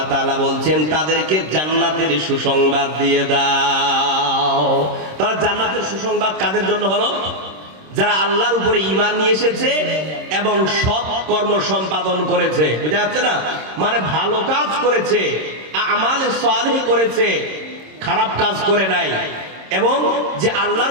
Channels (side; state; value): left; late; 26 ms